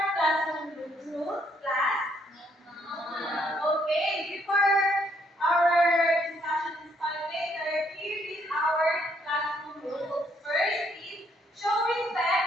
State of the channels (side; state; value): both; normal; correlation 0.70